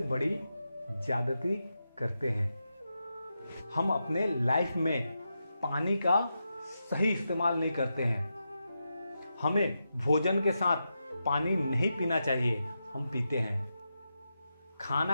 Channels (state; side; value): inverted; both; correlation -0.87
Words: बड़ी ज्यादती करते हैं। हम अपने लाइफ में पानी का सही इस्तेमाल नहीं करते हैं। हमें भोजन के साथ पानी नहीं पीना चाहिए, हम पीते हैं।